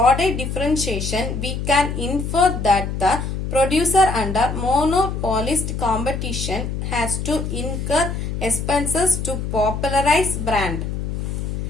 differentiation. We can infer that the producer under monopolist competition has to incur expenses to popularize brand.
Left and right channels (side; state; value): left; noise; hum, 4 dB below the sound